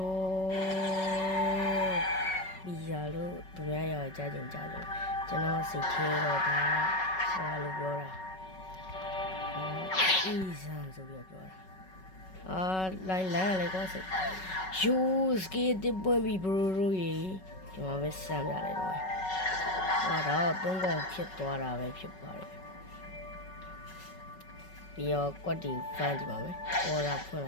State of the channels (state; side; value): late; right; 5.3 ms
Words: ပီဇာလို့သူများရောကြားကြလို့ကျွန်တော်စိတ်ထဲတော့ဒါဘာလို့ပြောတာအီဇန်ဆိုပြီးပြောတာလိုင်းလေကောစိယူစကေးတစ်ပွင့်ပြီးဘရိုရေဒီမှာပဲစမ်းပြလိုက်တော့တော့သုံးကောင်ဖြစ်သွားတာပဲဖြစ်ပါတယ်ပြီးတော့ကွက်တီဖမ်းကြည့်ပါမယ်အော်ဒါဖွင့်လိ